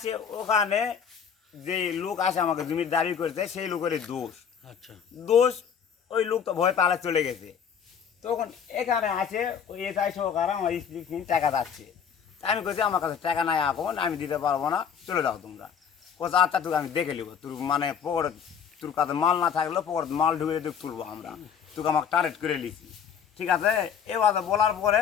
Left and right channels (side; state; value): right; quieter; 7.4 dB